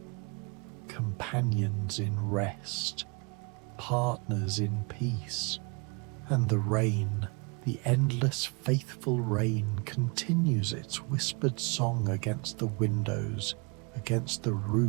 companions in rest, partners in peace. And the rain, the endless faithful rain, continues its whispered song against the windows, against the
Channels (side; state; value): left; quieter; 31.4 dB